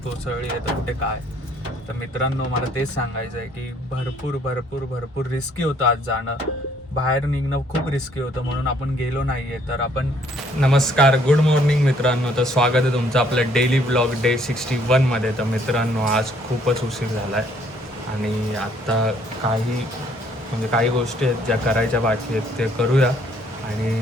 कोसळली आहे तर कुठे काय. तर मित्रांनो, मला तेच सांगायचं आहे की भरपूर भरपूर भरपूर रिस्की होतं आज जाणं. बाहेर निघणं खूप रिस्की होतं, म्हणून आपण गेलो नाहीये. तर आपण नमस्कार, गुड मॉर्निंग मित्रांनो. तर स्वागत आहे तुमचं आपलं डेली ब्लॉग डे 61 मध्ये. तर मित्रांनो, आज खूपच उशीर झाला आहे आणि आत्ता काही गोष्टी आहेत ज्या करायच्या बाकी आहेत ते करूया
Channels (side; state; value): both; normal; correlation 0.64